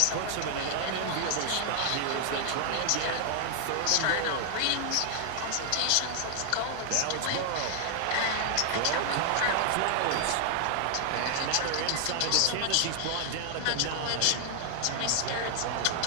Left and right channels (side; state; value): both; different; correlation 0.00